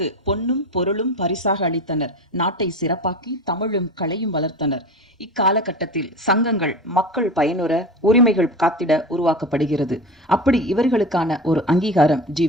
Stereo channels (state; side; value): normal; both; correlation 0.29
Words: பொன்னும் பொருளும் பரிசாக அளித்தனர். நாட்டை சிறப்பாக்கி தமிழும் கலையும் வளர்த்தனர். இக்காலகட்டத்தில் சங்கங்கள் மக்கள் பயனுற உரிமைகள் காத்திட உருவாக்கப்படுகிறது. அப்படி இவர்களுக்கான ஒரு அங்கீகாரம்